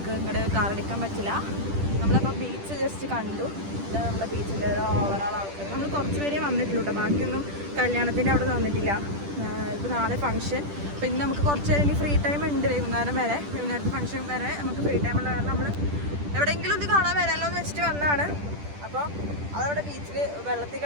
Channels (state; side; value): late; left; 10 ms